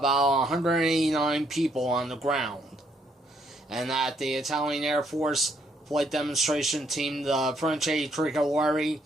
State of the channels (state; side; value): normal; both; correlation 0.71